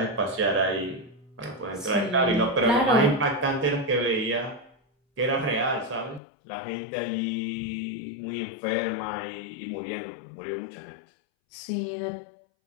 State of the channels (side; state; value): right; drops out; at 6.2 s